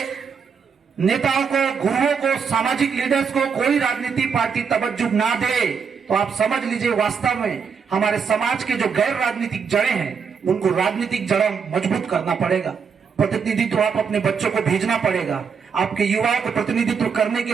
नेताओं को, गुरुओं को, सामाजिक लीडर्स को कोई राजनीति पार्टी तवज्जो ना दे, तो आप समझ लीजिए वास्तव में हमारे समाज के जो गैर राजनीतिक जड़ें हैं, उनको राजनीतिक जड़ें मजबूत करना पड़ेगा। प्रतिनिधित्व आप अपने बच्चों को भेजना पड़ेगा, आपके युवाओं को प्रतिनिधित्व करने के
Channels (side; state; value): left; quieter; 6.2 dB